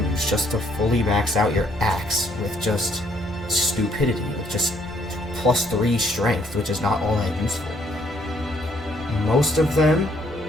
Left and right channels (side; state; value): both; normal; correlation 0.67